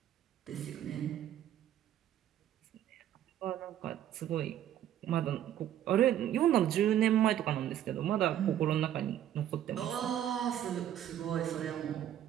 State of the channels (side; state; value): left; quieter; 11.2 dB